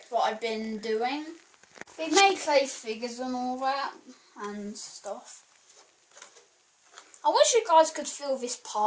what I've been doing. We made clay figures and all that and stuff. I wish you guys could feel this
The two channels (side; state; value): both; identical; correlation 1.00